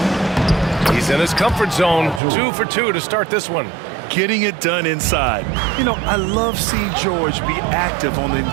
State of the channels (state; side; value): drops out; left; at 2.2 s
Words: He's in his comfort zone. 2 for 2 to start this one. Getting it done inside. You know, I love seeing George be active on the